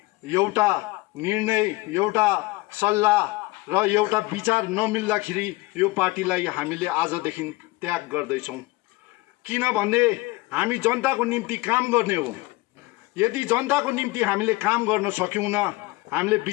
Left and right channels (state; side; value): quieter; right; 21.7 dB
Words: एउटा निर्णय, एउटा सल्लाह र एउटा विचार नमिल्दाखेरि यो पार्टीलाई हामीले आजदेखि त्याग गर्दैछौँ। किनभने हामी जनताको निम्ति काम गर्ने हो। यदि जनताको निम्ति हामीले काम गर्न सक्यौँ, हामीले